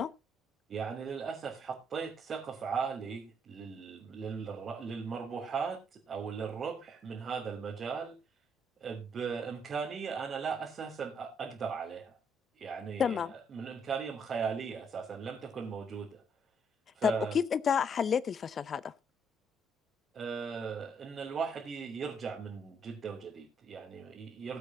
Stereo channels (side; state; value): both; normal; correlation 0.71